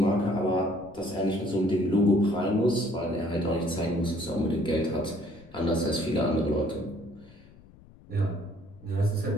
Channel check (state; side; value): noise; left; rumble, 23 dB below the sound